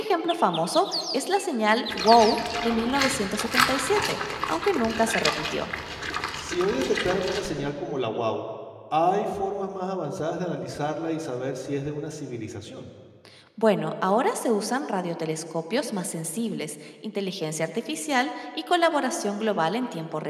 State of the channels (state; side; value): identical; both; correlation 1.00